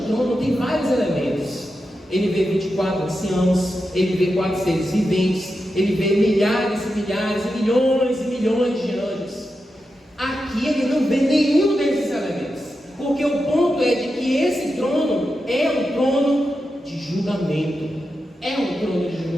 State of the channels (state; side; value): normal; both; correlation 0.89